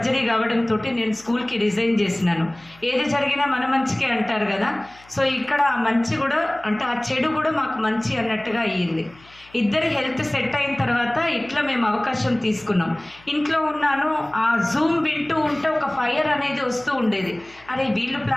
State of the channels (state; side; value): noise; left; hum, 27 dB below the sound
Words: కావడంతో నేను స్కూల్కి రిజైన్ చేసినాను. ఏది జరిగినా మన మంచికే అంటారు కదా. సో ఇక్కడ ఆ మంచి కూడా అంటే ఆ చెడు కూడా మాకు మంచి అన్నట్టుగా అయ్యింది. ఇద్దరి హెల్త్ సెట్ అయిన తర్వాత ఇట్లా మేము అవకాశం తీసుకున్నాం. ఇంట్లో ఉన్నాను, ఆ జూమ్ వింటూ ఉంటే ఒక ఫైర్ అనేది వస్తూ ఉండేది. అరే వీళ్ళు